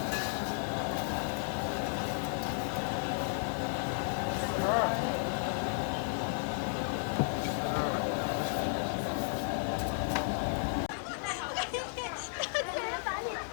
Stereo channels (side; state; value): right; silent; digital silence